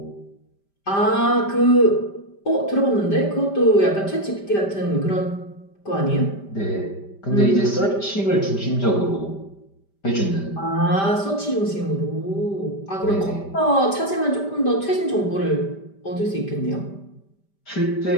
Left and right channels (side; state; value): right; late; 5.1 ms